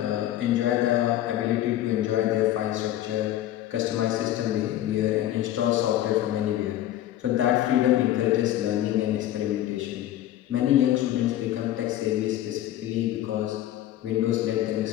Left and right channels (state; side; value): quieter; right; 13.1 dB